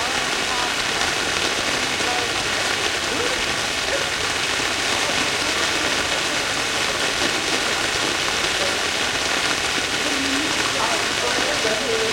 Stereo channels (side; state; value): both; identical; correlation 1.00